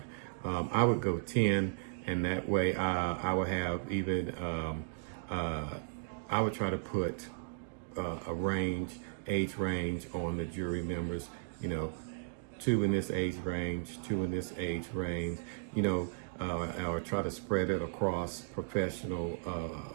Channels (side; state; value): left; silent; digital silence